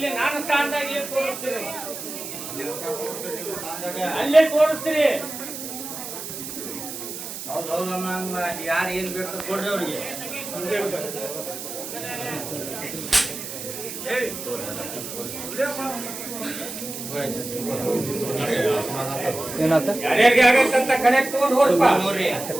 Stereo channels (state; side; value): noise; right; hiss, 8 dB below the sound